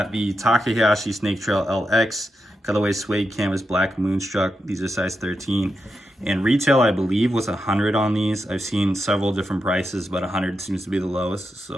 the Taka Hayashi Snake Trail LX, colorway suede canvas black Moonstruck. These are size 13. And retail, I believe, was 100 on these. I've seen several different prices, but 100 seems to be the lowest.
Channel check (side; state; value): both; normal; correlation 0.86